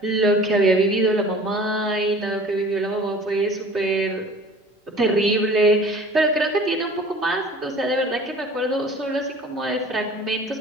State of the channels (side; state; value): both; normal; correlation 0.46